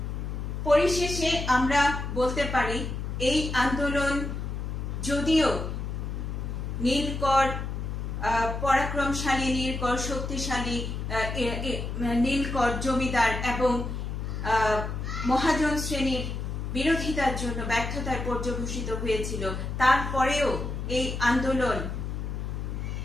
পরিশেষে আমরা বলতে পারি, এই আন্দোলন যদিও নীলকর পরাক্রমশালী নীলকর, শক্তিশালী নীলকর জমিদার এবং মহাজন শ্রেণীর বিরোধিতার জন্য ব্যর্থতায় পর্যবসিত হয়েছিল, তারপরেও এই আন্দোলন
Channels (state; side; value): noise; left; hum, 4 dB below the sound